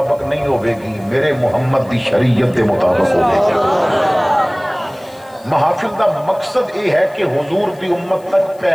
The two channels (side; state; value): left; noise; hiss, 29 dB below the sound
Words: نہیں ہوئے گی، میرے محمد دی شریعت دے مطابق ہوئے گی۔ محافل دا مقصد یہ ہے کہ حضور دی امت تک